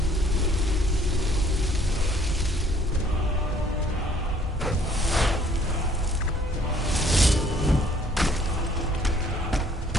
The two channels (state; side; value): normal; both; correlation 0.60